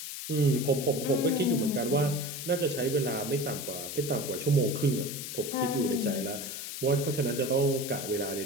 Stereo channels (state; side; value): noise; left; hiss, 7 dB below the sound